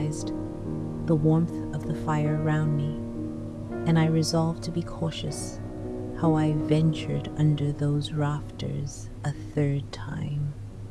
the warmth of the fire round me, and I resolved to be cautious how I ventured under those rafters a third time.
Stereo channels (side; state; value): both; identical; correlation 1.00